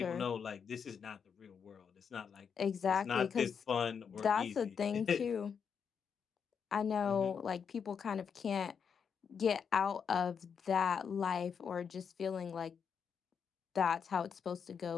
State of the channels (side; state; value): right; quieter; 6.7 dB